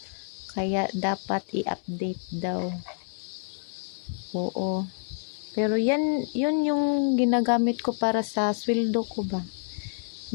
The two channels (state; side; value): silent; right; 59 dB below the other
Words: Kaya dapat i-update daw. Oo. Pero yun yung ginagamit ko para sa sweldo ko ba.